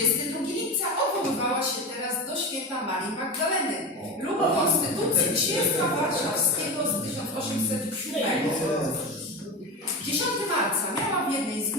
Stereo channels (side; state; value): both; normal; correlation 0.23